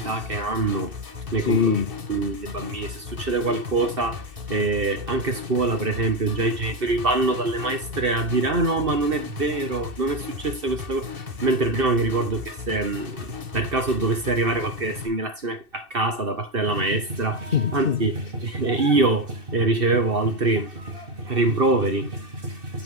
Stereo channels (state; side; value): late; left; 2.7 ms